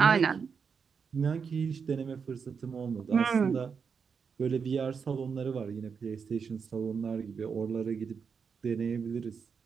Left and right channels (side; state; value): left; quieter; 6.0 dB